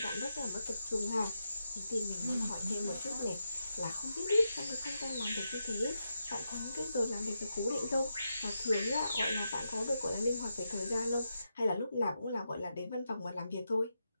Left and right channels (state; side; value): inverted; both; correlation -0.86